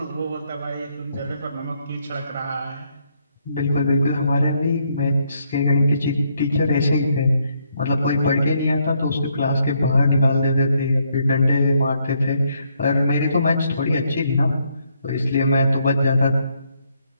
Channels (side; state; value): both; inverted; correlation -0.74